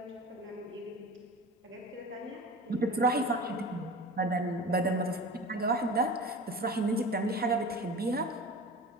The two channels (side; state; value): both; normal; correlation 0.35